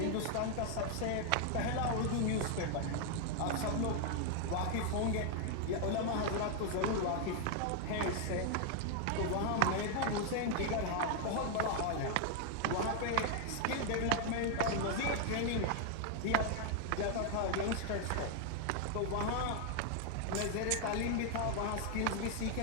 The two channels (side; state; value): both; different; correlation 0.00